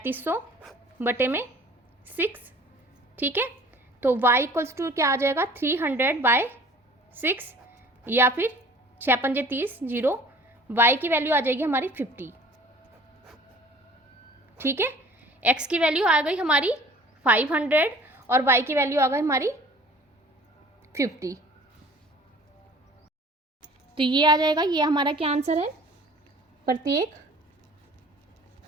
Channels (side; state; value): both; normal; correlation 0.49